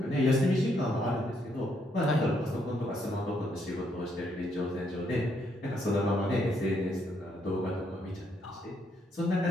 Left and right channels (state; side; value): normal; both; correlation 0.74